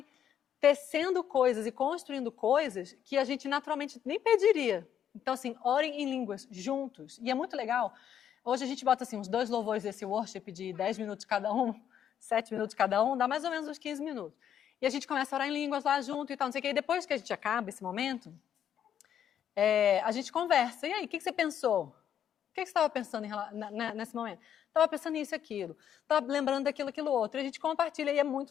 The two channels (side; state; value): right; quieter; 9.5 dB